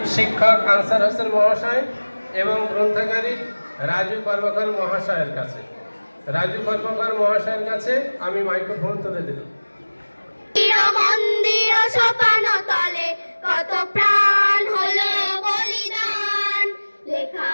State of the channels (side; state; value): both; inverted; correlation -1.00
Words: শিক্ষক আনসার হোসেন মহাশয় এবং গ্রন্থাগারিক রাজু কর্মকার মহাশয়ের কাছে আমি মাইক্রোফোন তুলে দিলাম। মন্দির সোপান তলে কত প্রাণ হলো বলিদান, লেখা